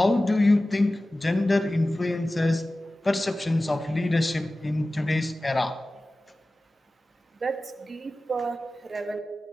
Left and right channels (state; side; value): normal; both; correlation 0.96